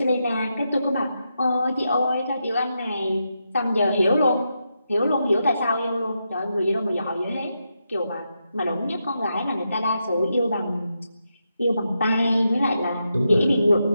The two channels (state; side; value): inverted; both; correlation -0.85